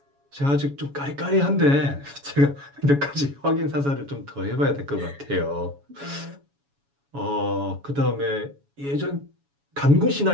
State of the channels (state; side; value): late; left; 7.1 ms